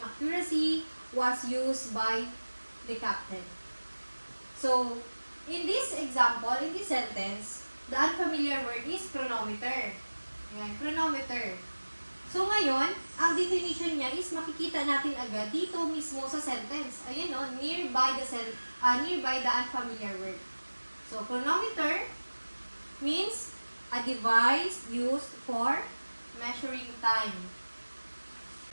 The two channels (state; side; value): inverted; both; correlation -1.00